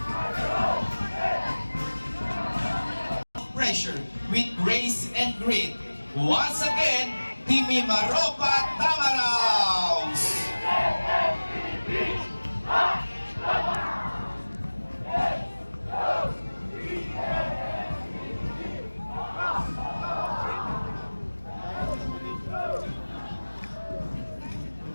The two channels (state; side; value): inverted; both; correlation -1.00